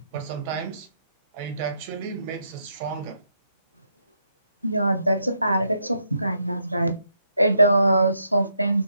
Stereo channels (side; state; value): both; inverted; correlation -0.77